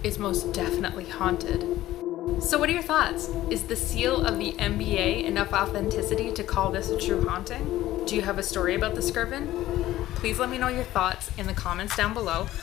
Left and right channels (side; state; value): right; quieter; 14.9 dB